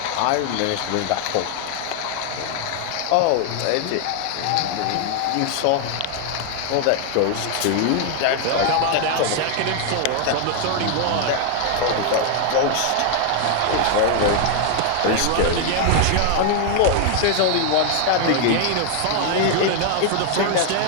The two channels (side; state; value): both; different; correlation 0.00